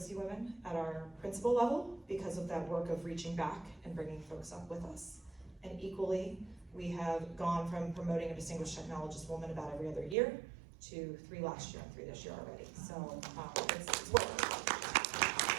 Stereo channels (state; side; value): drops out; left; at 10.2 s